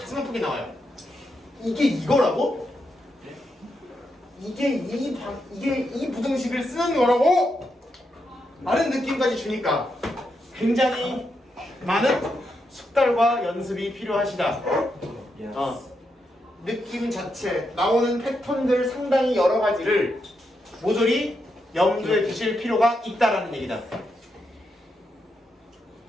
아프게 나와요. 이게 이거라고? 이게 이 부등식을 쓰는 거라고? 라는 느낌까지 주니까 굉장히 많은 숙달과 연습이 필요하시다. 느낌 자체, 나오는 패턴들 상당히 여러 가지를 모조리 염두에 두실 필요가 있다라는 얘기다.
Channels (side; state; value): both; normal; correlation 0.83